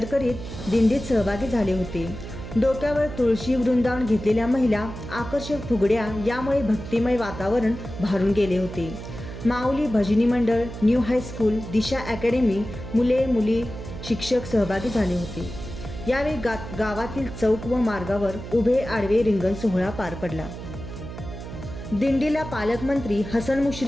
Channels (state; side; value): noise; right; hum, 10 dB below the sound